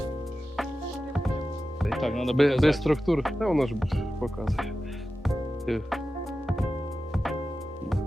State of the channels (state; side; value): normal; both; correlation 0.93